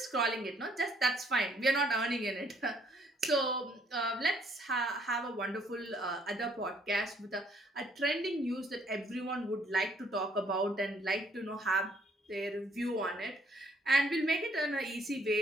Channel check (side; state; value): both; normal; correlation 0.65